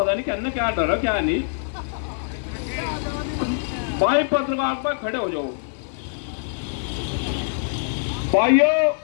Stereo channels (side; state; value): right; silent; 59 dB below the other